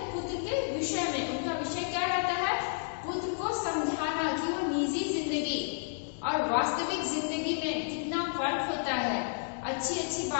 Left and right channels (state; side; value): silent; right; digital silence